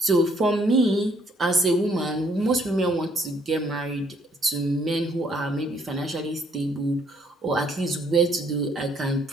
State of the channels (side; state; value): both; normal; correlation 0.67